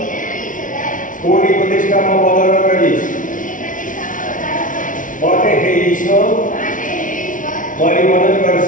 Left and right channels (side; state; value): right; late; 0.38 ms